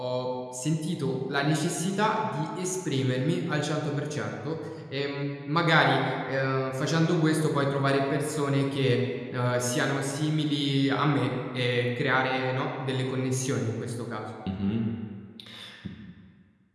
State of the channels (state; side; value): identical; both; correlation 1.00